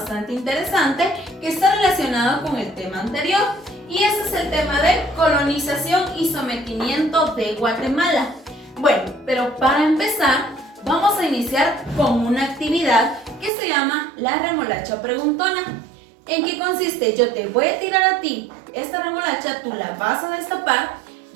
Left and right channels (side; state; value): left; drops out; at 13.5 s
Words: interesante que está relacionado con el tema anterior, y ese es el tema de colonización y sometimiento de Guatemala. Bueno, pero para empezar vamos a iniciar con una actividad que se llama la remolacha preguntona. ¿En qué consiste? Yo te voy a tirar a ti esta remolacha, tú la vas a destapar,